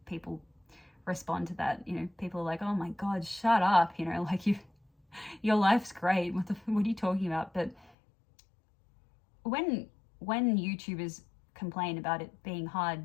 people respond to that. You know, people are like, oh my god, shut up, you know, like your life's great, what are you talking about? But when YouTubers complain about it being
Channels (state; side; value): drops out; right; at 7.9 s